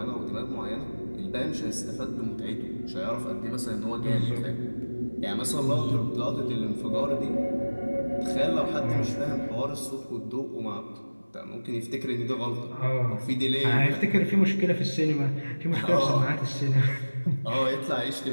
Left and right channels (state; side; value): inverted; both; correlation -1.00